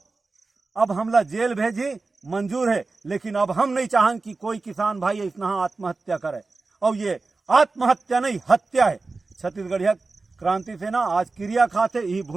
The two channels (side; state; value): left; quieter; 3.7 dB